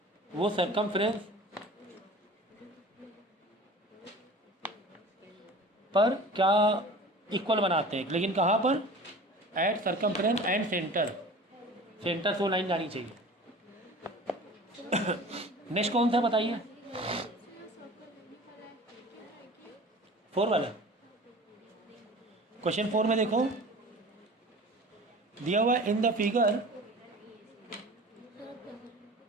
वो सरकमफ्रेंस पर क्या इक्वल बनाते हैं, लेकिन कहाँ पर, एट सरकमफ्रेंस एंड सेंटर से वो लाइन जानी चाहिए। नेक्स्ट कौन सा बताइए, 4 वाला। क्वेश्चन 4 में देखो दिया हुआ इन द फिगर,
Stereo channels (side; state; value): both; normal; correlation 0.41